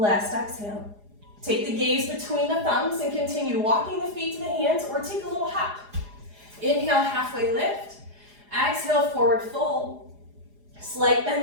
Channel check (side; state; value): left; late; 4.9 ms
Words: exhale. Take the gaze between the thumbs and continue walking the feet to the hands or take a little hop. Inhale, halfway lift. Exhale, forward fold. Slight